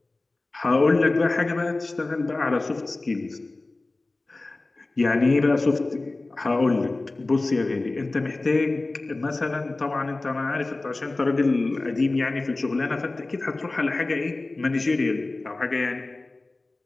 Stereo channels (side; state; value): right; quieter; 3.1 dB